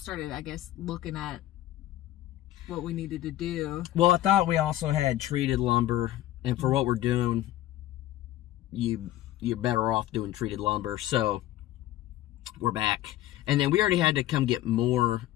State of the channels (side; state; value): right; quieter; 14.3 dB